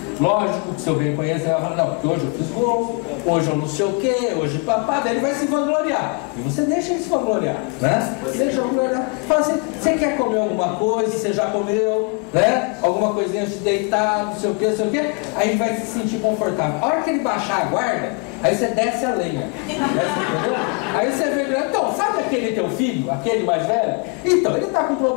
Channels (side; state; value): right; quieter; 32.4 dB